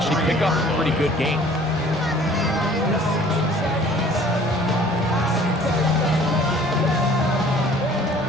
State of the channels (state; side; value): normal; both; correlation 0.52